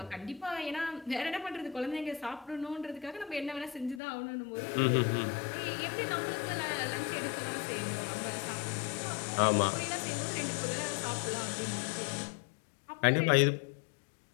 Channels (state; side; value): drops out; right; at 4.0 s